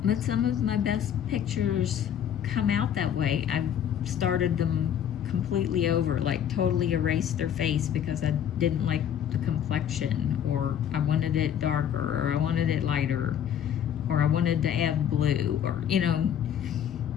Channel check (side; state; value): right; quieter; 9.4 dB